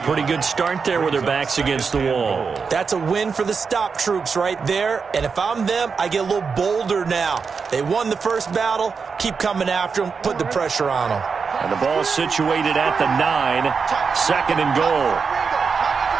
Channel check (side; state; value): left; quieter; 5.4 dB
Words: good start there with their backs against the wall. That's a win for the stop troops right there. And if I'm them, I get a little bolder now. They won the first battle. Keep coming after them. Put the pressure on them. And the ball situated at the 9. 2nd and goal.